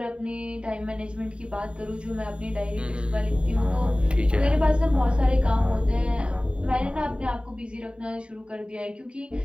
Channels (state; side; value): late; left; 0.054 ms